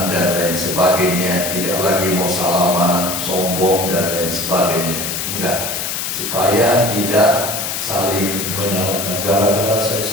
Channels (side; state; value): left; noise; hiss, 3 dB below the sound